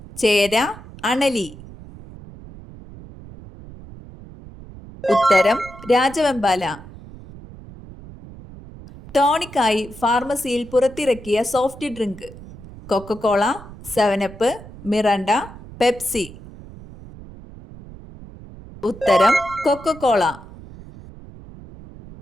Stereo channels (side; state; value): right; noise; rumble, 17 dB below the sound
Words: ചേര, അണലി. ഉത്തരം രാജവെമ്പാല. ടോണിക്കായി ഫാർമസിയിൽ പുറത്തിറക്കിയ soft drink: Coca Cola, 7up, Miranda, Pepsi. ഉത്തരം കൊക്കക്കോള.